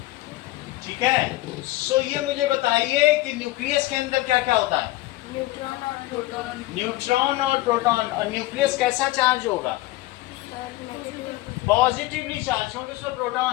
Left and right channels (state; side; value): quieter; right; 18.1 dB